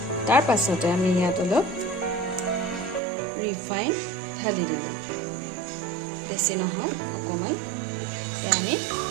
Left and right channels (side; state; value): left; drops out; at 3.0 s